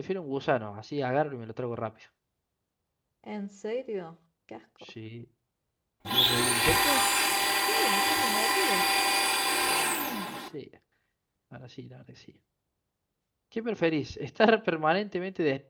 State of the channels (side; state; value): both; identical; correlation 1.00